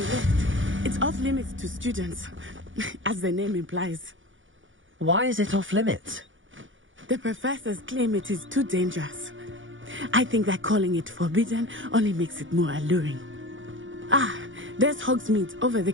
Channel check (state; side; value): late; left; 0.56 ms